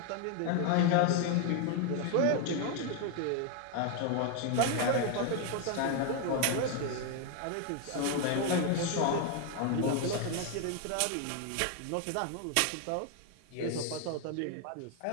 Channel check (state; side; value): different; both; correlation 0.01